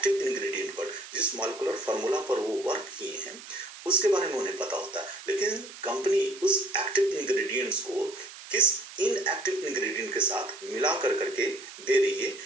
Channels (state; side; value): noise; right; hiss, 15 dB below the sound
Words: इंग्रेडिएंट पर, जिस मॉलिक्यूलर फार्मूला पर वो वर्क किए हैं उसके बारे में उन्हें पता होता है। लेकिन कंपनी उस एक्टिव इंग्रेडिएंट्स को किस इनएक्टिव इंग्रेडिएंट के साथ मिला करके दे रही है,